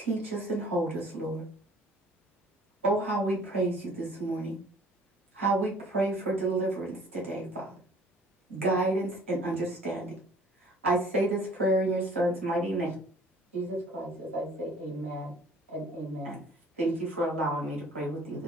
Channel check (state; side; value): normal; both; correlation 0.54